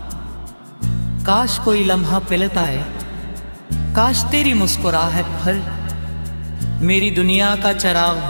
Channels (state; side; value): inverted; both; correlation -1.00